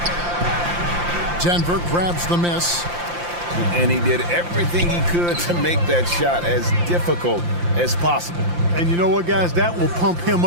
Denver grabs the miss. And he did everything he could to make that shot as difficult as possible. And you know what, guys? That will pump him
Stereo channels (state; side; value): late; left; 5.8 ms